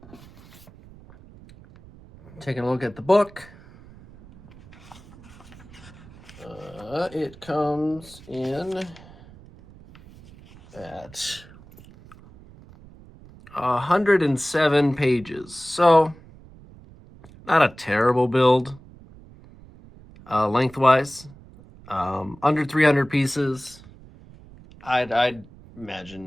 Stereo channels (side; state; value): right; noise; rumble, 21 dB below the sound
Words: Taking a look at the book. It comes in at 107 pages. So, not a terrible build lengthwise. Under 300 pieces. I'd